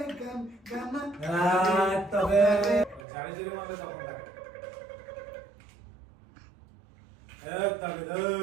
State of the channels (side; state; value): left; drops out; at 3.0 s